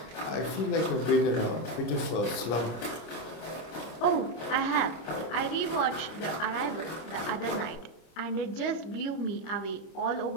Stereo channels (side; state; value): right; late; 25 ms